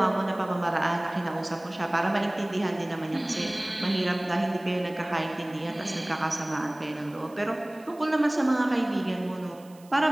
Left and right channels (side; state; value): right; noise; hiss, 26 dB below the sound